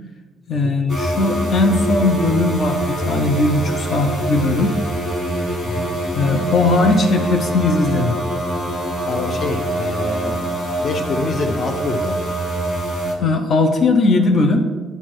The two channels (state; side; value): normal; both; correlation 0.59